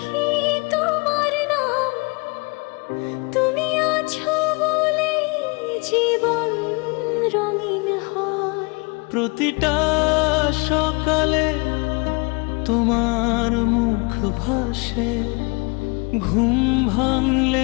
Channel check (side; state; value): right; quieter; 29.9 dB